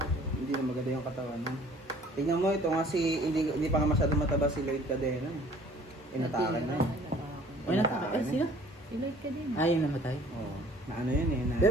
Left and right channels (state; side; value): normal; both; correlation 0.53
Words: Hindi na maganda yung katawan mo. Tingnan mo, ito nga hindi pa nga masyado mataba si Lloyd Cadena. Inatakan na yun. Ay, nataka. Eh, sino? Si Lloyd ka din. Ah, yung namatay. Oo. Na ano yun eh. Na